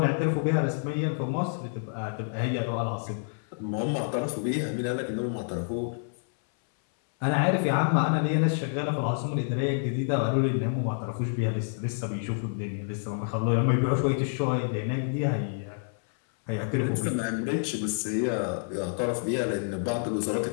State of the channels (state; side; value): silent; right; 59 dB below the other